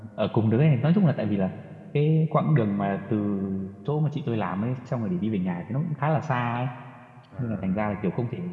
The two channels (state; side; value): identical; both; correlation 1.00